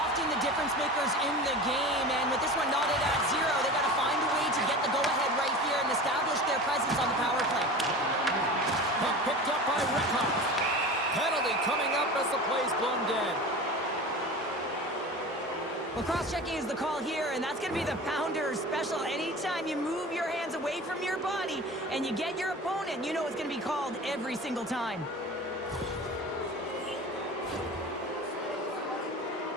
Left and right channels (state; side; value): normal; both; correlation 0.34